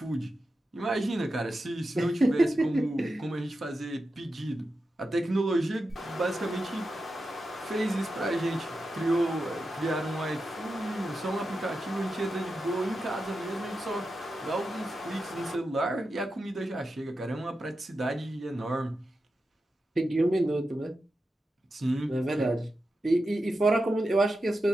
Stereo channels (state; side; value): normal; both; correlation 0.90